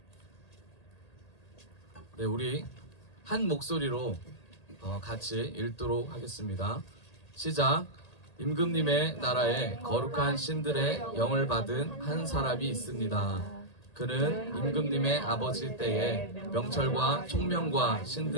네, 우리 한 목소리로 같이 읽도록 하겠습니다. 시작. 임금님의 나라에 거룩한 신들의 영을 받은 한 사람이 있습니다. 그는 임금님의 아버지 때에 명철과 총명과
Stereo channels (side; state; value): right; late; 1.8 ms